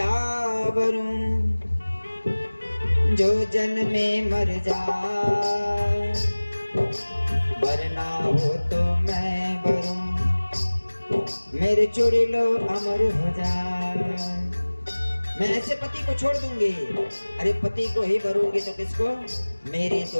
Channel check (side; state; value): both; inverted; correlation -1.00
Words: वरूं, जो जन्मे मर जाए, वरना हो तो मैं वरूं, मेरे चोरी लो अमर हो जाए। मैं ऐसे पति को छोड़ दूंगी? अरे पति को ही भरूंगी तो किसको? मेरी